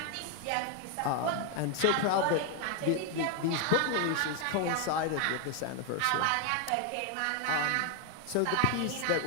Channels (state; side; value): different; both; correlation 0.01